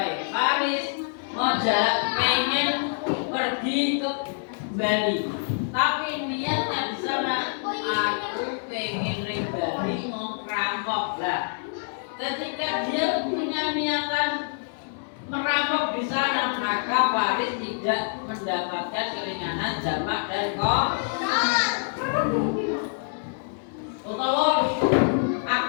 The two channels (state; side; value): silent; right; digital silence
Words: Paris mau pengen lagi ke Bali. Tapi niatnya di sana aku pengen ring Bali mau ngerampok lah. Ketika dia punya niatan merampok di sana, maka Faris tidak mendapatkan keringanan jamak dan utawa